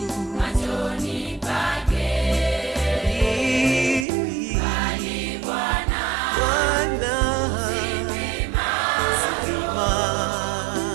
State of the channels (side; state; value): left; drops out; at 4.0 s